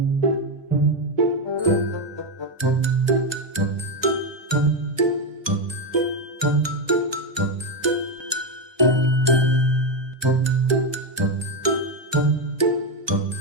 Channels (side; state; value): left; late; 1.2 ms